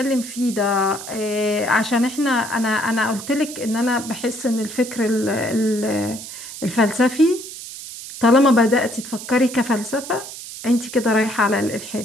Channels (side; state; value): right; noise; hiss, 11 dB below the sound